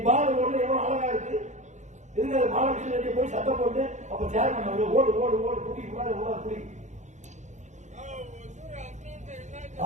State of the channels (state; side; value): late; left; 0.34 ms